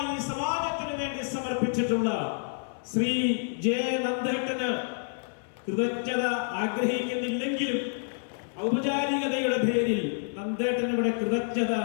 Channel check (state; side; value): silent; right; 58 dB below the other